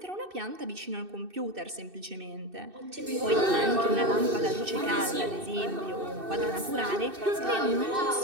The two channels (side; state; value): left; late; 2.6 ms